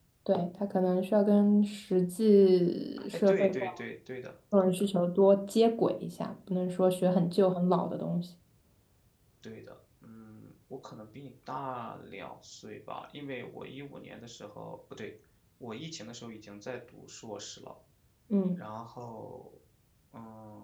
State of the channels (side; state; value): both; identical; correlation 1.00